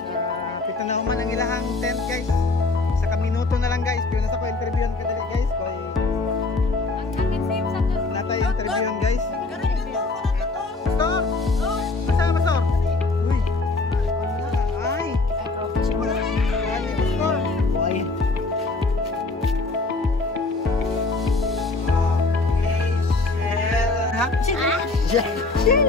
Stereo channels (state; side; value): quieter; right; 3.4 dB